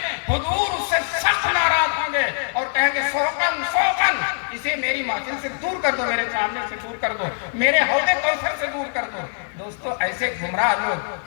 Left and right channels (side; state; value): right; silent; 64 dB below the other